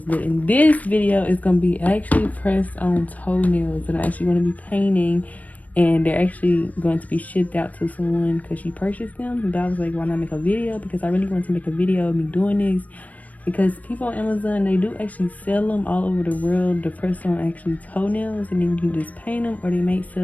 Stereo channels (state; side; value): late; right; 0.072 ms